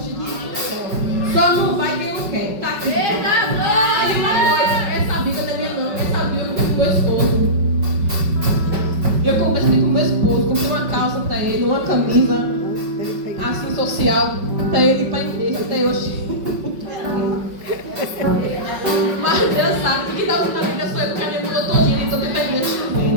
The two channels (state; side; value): late; left; 5.3 ms